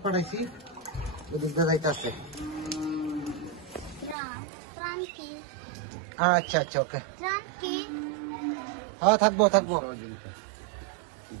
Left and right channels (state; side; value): drops out; left; at 4.2 s